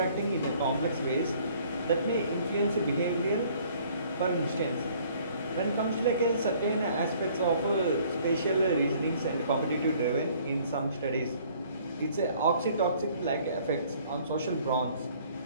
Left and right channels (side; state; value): both; inverted; correlation -0.58